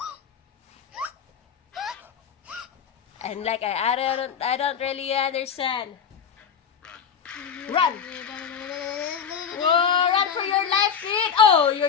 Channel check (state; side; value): quieter; right; 7.2 dB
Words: And like I don't really understand. Run! Whoa, run for your life, kid! Oh,